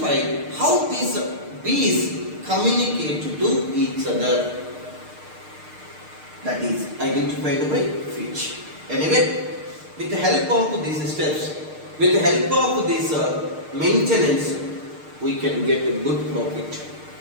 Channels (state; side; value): late; left; 6.6 ms